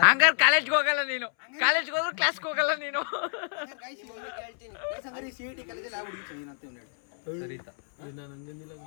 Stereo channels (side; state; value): right; silent; 59 dB below the other